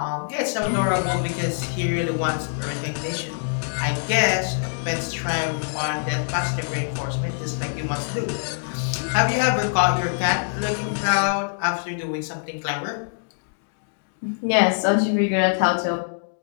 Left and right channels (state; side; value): silent; right; digital silence